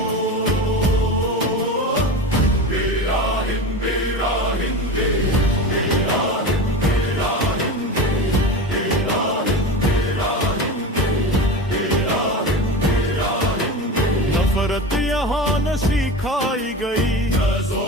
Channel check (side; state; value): both; normal; correlation 0.27